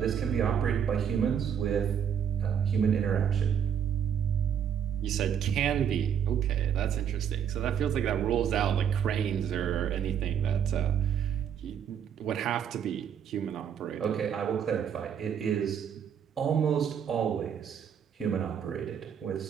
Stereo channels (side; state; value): left; quieter; 8.3 dB